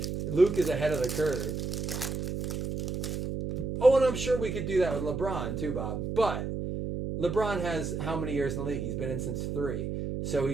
Luke is ahead of the curve. Oh, and I'm sure we could do that with LeBron too, Bob. But LeBron has how many years in the league? He's been in since 3. So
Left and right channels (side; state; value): right; noise; hum, 3 dB below the sound